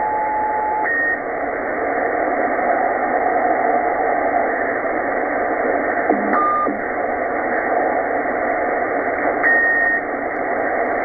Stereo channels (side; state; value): left; noise; rumble, 20 dB below the sound